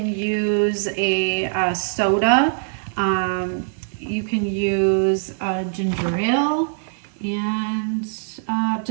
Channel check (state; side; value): silent; left; digital silence